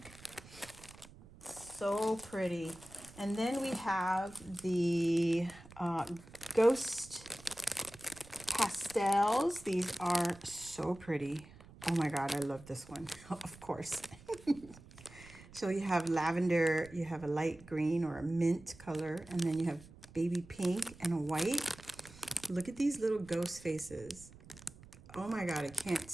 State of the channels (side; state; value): right; noise; rumble, 20 dB below the sound